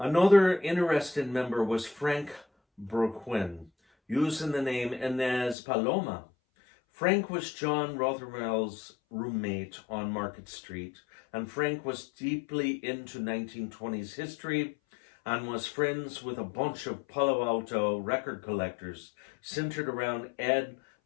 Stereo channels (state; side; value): drops out; right; at 5.6 s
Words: interesting member was Frank Burquin, using the name Inez Paloma. Frank was John Rothermel's roommate on Market Street, and Frank was deeply into 1920s history and was friends with a bunch of Palo Alto record collectors centered around Ed